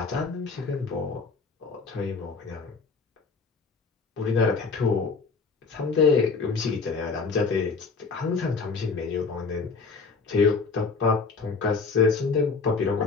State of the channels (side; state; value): right; quieter; 4.6 dB